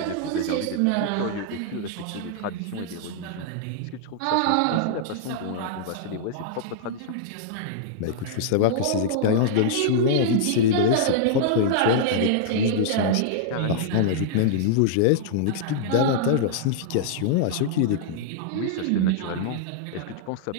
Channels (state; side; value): different; both; correlation -0.01